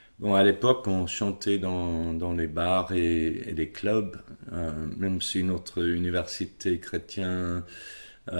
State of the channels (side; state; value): both; inverted; correlation -1.00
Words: l'époque, on chantait dans les bars et les clubs, même si notre université chrétienne